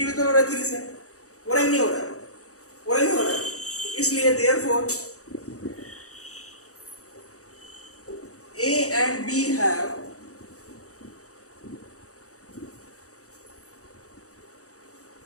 हो रहा है 3 से, हो रहा है नहीं हो रहा है, हो रहा है नहीं हो रहा है। इसलिए therefore a and b have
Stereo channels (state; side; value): late; right; 0.65 ms